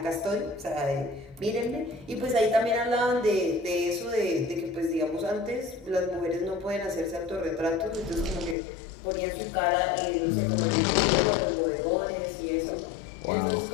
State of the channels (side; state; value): right; drops out; at 8.6 s